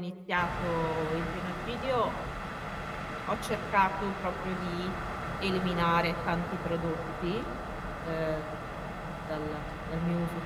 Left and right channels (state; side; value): identical; both; correlation 1.00